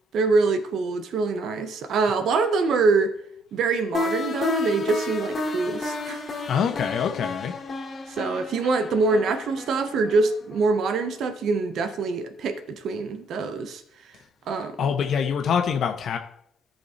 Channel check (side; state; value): both; normal; correlation 0.67